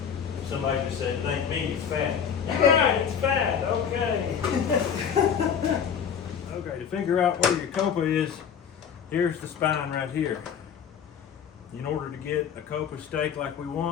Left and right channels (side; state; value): right; quieter; 7.7 dB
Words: Somebody just said, it ain't meat, it's fat. You're right, it's fat, okay. Okay, to figure out where your copa is, here's the spine right here. In order to get a copa steak like we